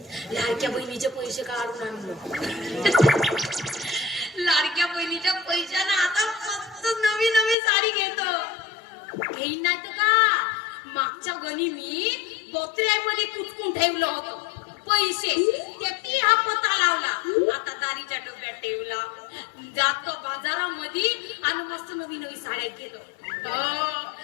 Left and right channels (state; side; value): drops out; right; at 7.6 s